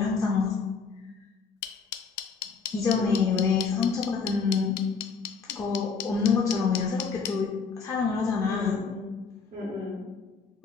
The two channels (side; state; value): right; quieter; 5.3 dB